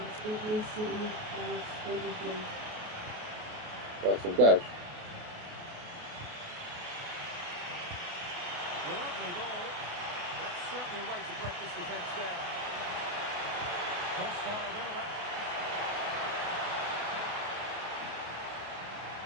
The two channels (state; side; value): late; left; 28 ms